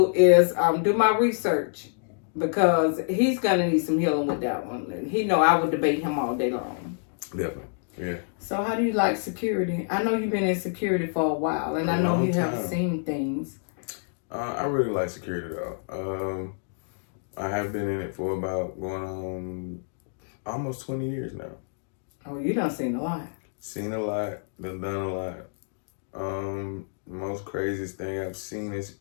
is do my research, because he's gonna need some healing with that one. And he know I would debate him all day long. Definitely, yeah. So how do you like security? I know you've been in security for a while, and I know you have seen things. I really like security though. I have been in it for about going on almost 20 years now. Oh, you done seen a lot. Seen a lot, done a lot. Most craziest thing I've seen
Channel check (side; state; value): right; silent; digital silence